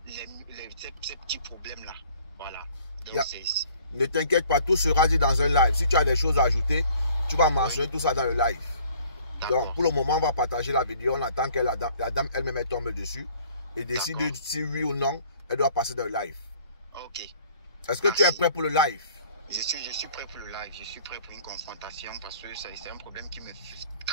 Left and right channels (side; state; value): both; inverted; correlation -0.56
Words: ces petits problèmes-là. Voilà. Donc, ne t'inquiète pas, tout sera dit dans un live. Si tu as des choses à ajouter, tu vas mentionner tout ça dans le live. Donc, pour le moment, on va partager la vidéo. On attend que la dame elle-même tombe dessus et décide si oui ou non, elle doit passer dans le live. Ok. Est-ce que tu es prêt pour le live? Je suis prêt pour le live. Je suis prêt pour une confrontation parce que c'est un problème qui me